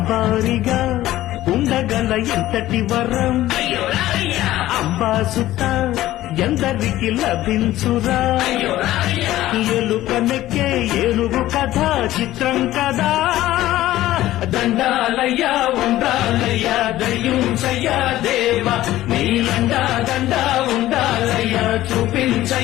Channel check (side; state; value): right; quieter; 15.0 dB